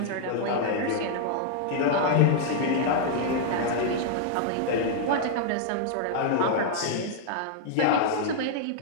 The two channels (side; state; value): both; different; correlation -0.01